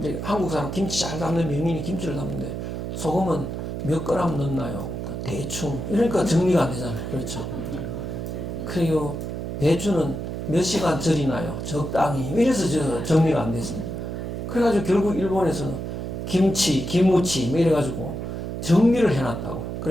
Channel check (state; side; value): noise; right; hum, 5 dB below the sound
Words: 한국 사람 김치 잘 담는 명인이 김치를 담는데, 소금은 몇 그램 넣나요? 그러니까 대충. 이러니까 정리가 안 되잖아요. 그렇죠. 그리고 배추는 몇 시간 절이나요? 적당히. 이래서 정리가 안 됐습니다. 그래가지고 결국 일본에서는 김치, 기무치, 뭐 이래가지고 정리를 해놨다고.